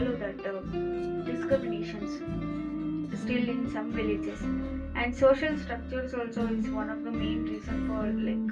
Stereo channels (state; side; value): identical; both; correlation 1.00